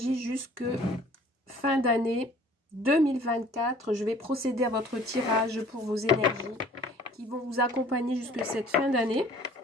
jusque fin d'année 2024. Je vais procéder à votre tirage pour vos énergies qui vont vous accompagner jusque cette fin d'année.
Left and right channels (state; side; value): normal; both; correlation 0.52